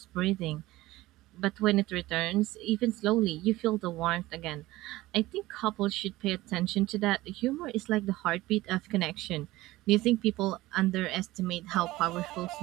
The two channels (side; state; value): left; quieter; 18.0 dB